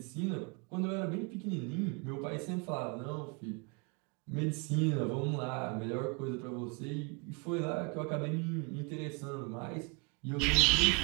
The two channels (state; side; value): quieter; left; 31.0 dB